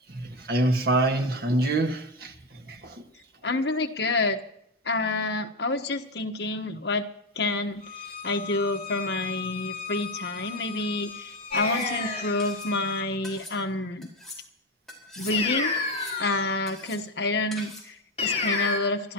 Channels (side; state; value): both; normal; correlation 0.12